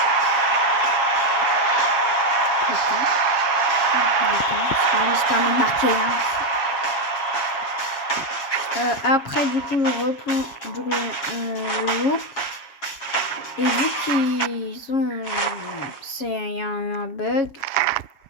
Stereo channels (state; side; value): late; right; 7.3 ms